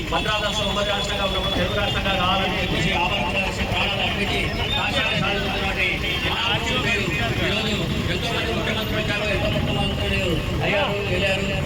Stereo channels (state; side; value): identical; both; correlation 1.00